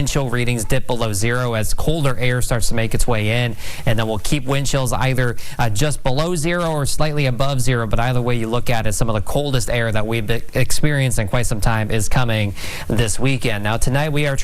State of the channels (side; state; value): both; identical; correlation 1.00